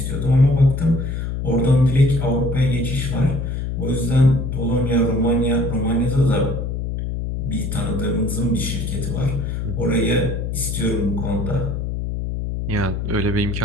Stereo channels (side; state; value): left; noise; hum, 3 dB below the sound